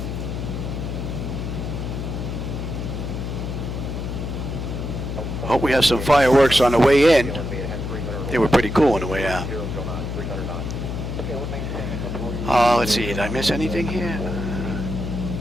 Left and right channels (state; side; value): noise; left; hum, 4 dB below the sound